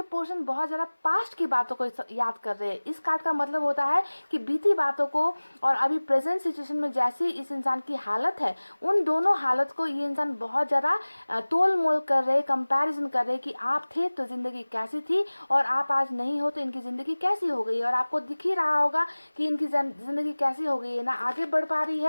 पोर्शन बहुत ज़्यादा पास्ट की बातों को याद कर रहे हैं। इस कार्ड का मतलब होता है कि बीती बातों को और अभी प्रेजेंट सिचुएशन में जैसी इस इंसान की हालत है, उन दोनों हालत को ये इंसान बहुत ज़्यादा तोल मोल कर रहे, कंपैरिजन कर रहे कि आप थे तो ज़िंदगी कैसी थी और आप आज नहीं हो तो इनकी ज़िंदगी कैसी हो गई। और आपको दिख ही रहा होगा कि इनकी ज़िंदगी कैसी हो गई है, ना आगे बढ़ पा रही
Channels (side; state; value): both; inverted; correlation -1.00